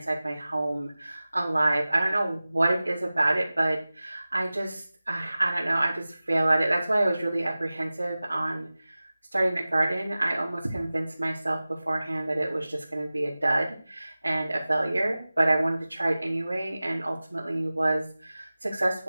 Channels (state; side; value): inverted; both; correlation -0.97